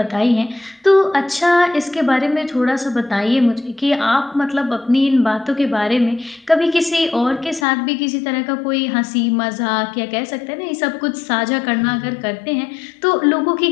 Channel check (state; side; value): drops out; right; at 7.7 s